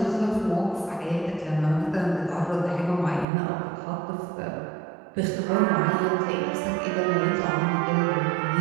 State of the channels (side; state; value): left; drops out; at 3.2 s